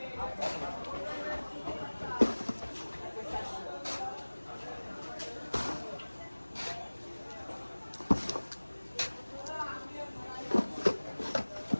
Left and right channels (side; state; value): both; inverted; correlation -1.00